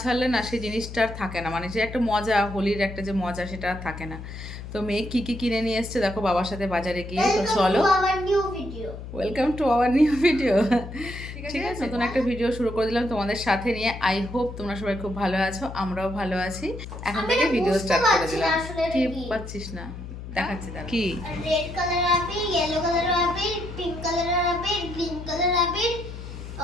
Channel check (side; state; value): left; noise; hum, 10 dB below the sound